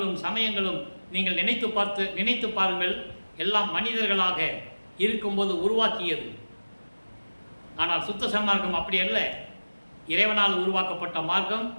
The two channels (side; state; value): both; inverted; correlation -1.00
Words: சமயங்களும் நீங்கள் நினைத்து பாருங்கள், எல்லாம் மனிதர்களாக இருக்கும்போது உருவாக்கியது. ஆனால் சுத்த சன்மார்க்கம் அப்படி அல்ல, இறைவனால் உருவாக்கப்பட்ட மார்க்கம்.